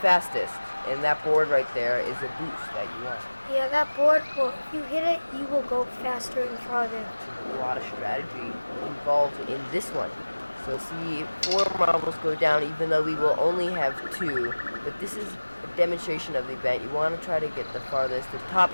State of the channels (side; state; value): both; inverted; correlation -1.00